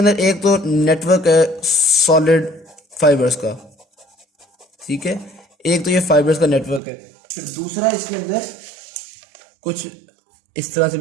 एक तो नेटवर्क है सॉलिड फाइबर्स का, ठीक है, एक तो ये फाइबर्स का नेटवर्क है, फिर दूसरा इसके अंदर कुछ इस तरह से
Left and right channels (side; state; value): left; drops out; at 6.8 s